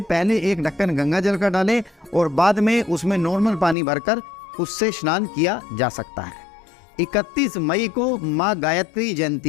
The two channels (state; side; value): drops out; right; at 3.8 s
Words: पहले एक ढक्कन गंगा जल का डालें और बाद में उसमें नॉर्मल पानी भरकर उससे स्नान किया जा सकता है। 31 मई को माँ गायत्री